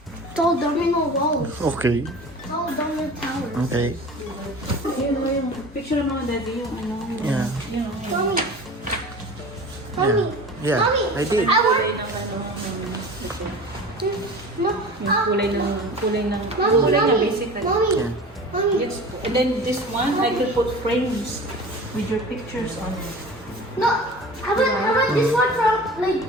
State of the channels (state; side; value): normal; both; correlation 0.37